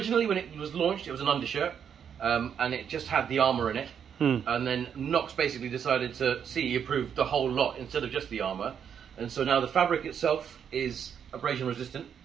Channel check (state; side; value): quieter; left; 8.0 dB